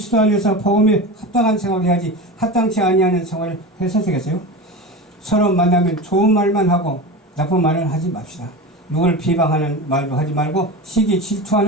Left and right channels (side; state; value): both; normal; correlation 0.26